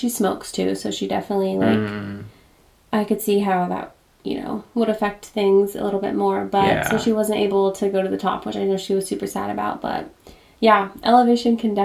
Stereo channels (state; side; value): identical; both; correlation 1.00